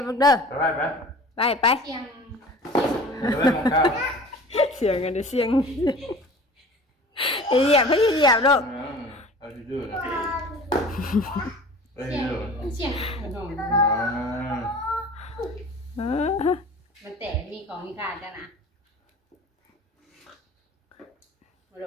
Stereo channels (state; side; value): normal; both; correlation 0.42